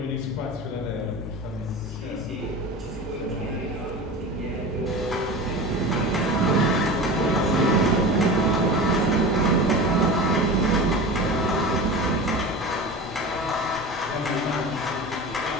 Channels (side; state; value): both; normal; correlation 0.31